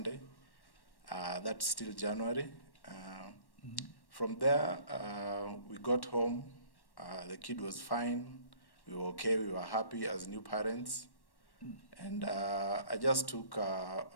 That's still January. From there, we got home. The kid was fine. We were okay. We were happy as new parents. And I just took a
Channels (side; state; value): right; late; 1.1 ms